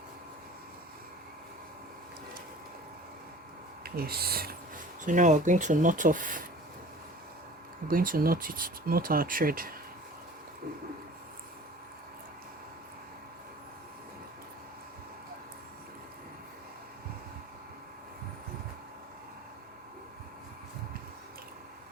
Yes. So now we're going to knot off. We're going to knot our thread.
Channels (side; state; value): both; normal; correlation 0.43